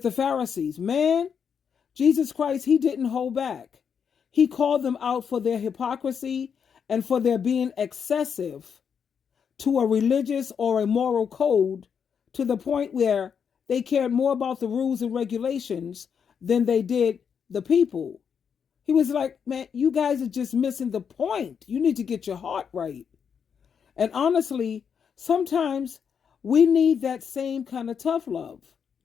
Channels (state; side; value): quieter; right; 7.0 dB